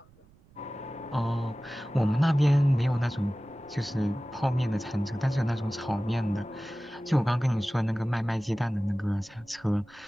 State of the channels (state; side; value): noise; right; rumble, 28 dB below the sound